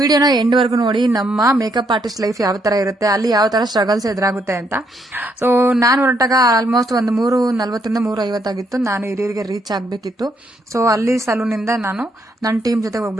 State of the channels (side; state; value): both; normal; correlation 0.74